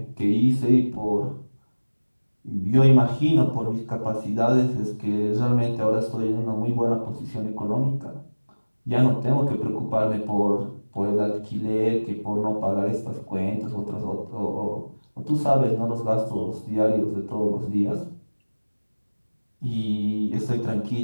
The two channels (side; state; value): both; inverted; correlation -1.00